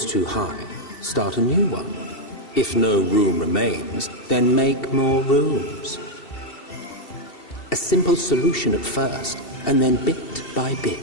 too high, start a new one. If no room remains, then make more rooms. A simple solution at first, and then bit by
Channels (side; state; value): right; late; 2.7 ms